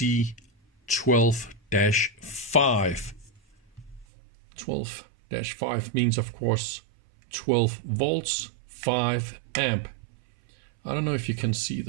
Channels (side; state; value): left; drops out; at 4.0 s